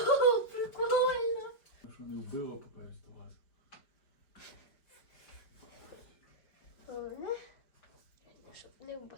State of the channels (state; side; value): late; right; 5.0 ms